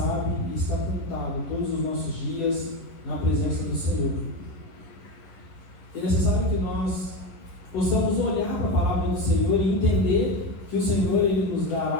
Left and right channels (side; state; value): right; late; 10 ms